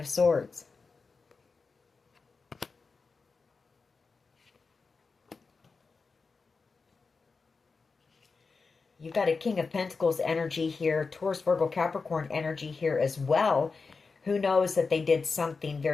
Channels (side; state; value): right; quieter; 4.5 dB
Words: Swords. You've got a King of Pentacles energy here, Taurus, Virgo, Capricorn energy here as well. Who knows that they did something